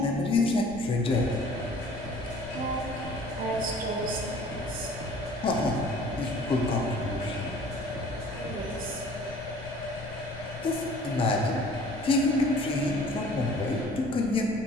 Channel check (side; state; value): left; noise; rumble, 14 dB below the sound